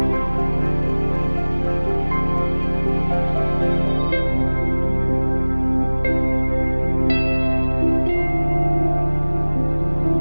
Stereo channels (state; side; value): inverted; both; correlation -1.00